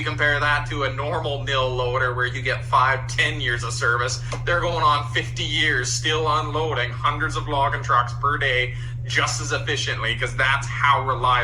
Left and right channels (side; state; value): both; identical; correlation 1.00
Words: compare that to a normal mill loader where you get 5-10 years of service, they're going on 50 years still unloading hundreds of logging trucks per day just as efficiently, because that's how